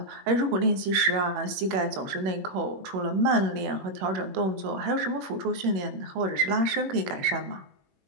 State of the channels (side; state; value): left; late; 21 ms